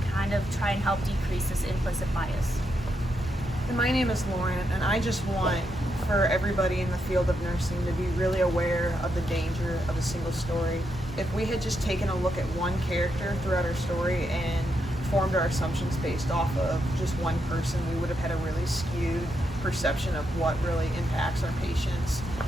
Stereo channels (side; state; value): both; normal; correlation 0.82